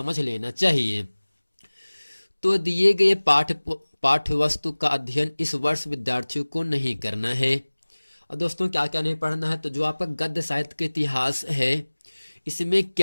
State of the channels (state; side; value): inverted; both; correlation -1.00